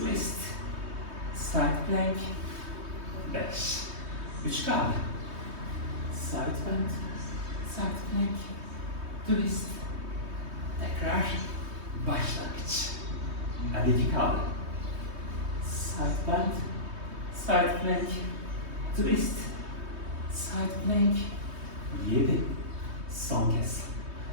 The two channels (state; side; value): late; left; 3.2 ms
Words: side plank, 5, 3 kaldı. Side plank, side plank, twist, tekrar başlangıç. Hadi 2 kaldı. Side plank, side plank, twist, side plank, 7. Son kez.